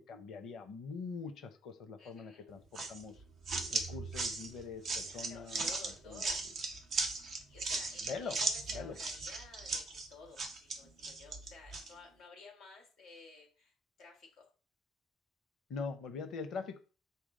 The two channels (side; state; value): both; normal; correlation 0.65